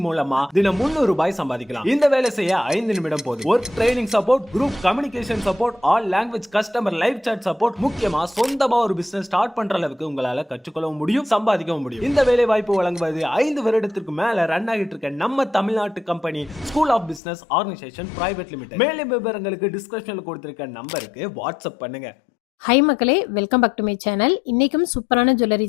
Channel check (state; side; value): drops out; right; at 17.2 s